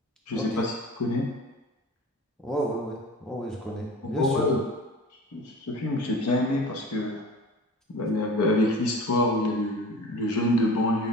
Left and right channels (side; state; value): both; normal; correlation 0.39